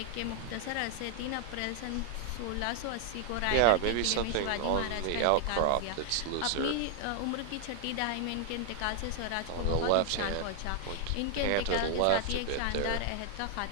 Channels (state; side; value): different; both; correlation 0.00